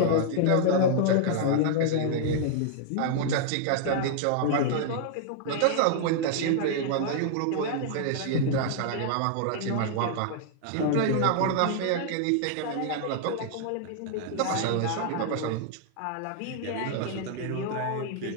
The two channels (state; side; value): different; both; correlation -0.01